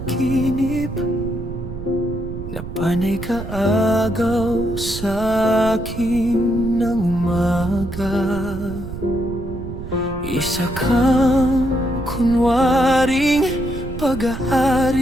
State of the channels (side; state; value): right; noise; rumble, 10 dB below the sound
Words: na panay kaagaw sa akin ng umaga. Isa kang kunwaring